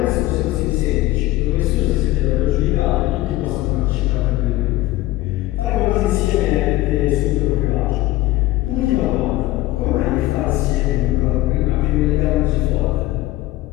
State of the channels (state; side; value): quieter; right; 17.2 dB